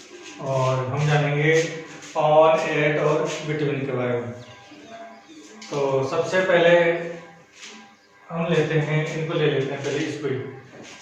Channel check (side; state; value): both; identical; correlation 1.00